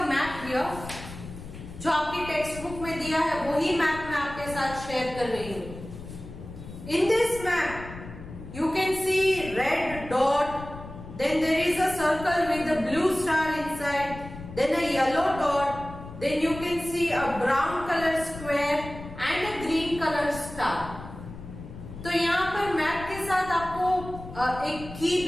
map here, जो आपकी टेक्स्ट बुक में दिया है वही मैप मैं आपके साथ शेयर कर रही हूं। In this map you can see red dot, then there is a circle with a blue star inside, then a yellow dot, then you can see a brown color square and a green color star. तो यहाँ पर map के साथ आपको एक की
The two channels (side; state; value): left; noise; rumble, 13 dB below the sound